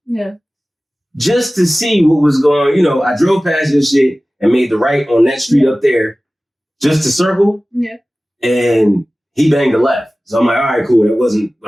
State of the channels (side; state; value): both; normal; correlation 0.97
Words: Yeah. Just to see what was going, I drove past your shit and made the right on that street up there just to circle. Yeah. And he banged the left. So I'm like, all right, cool. That wasn't